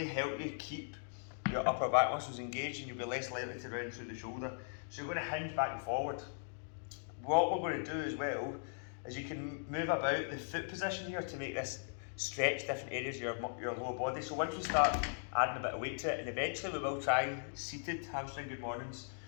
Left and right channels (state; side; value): silent; right; digital silence